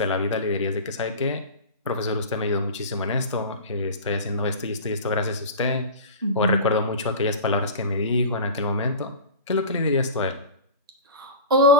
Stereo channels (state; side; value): inverted; both; correlation -0.32